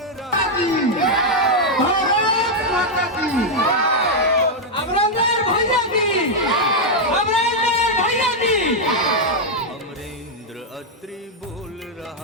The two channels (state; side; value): normal; both; correlation -0.01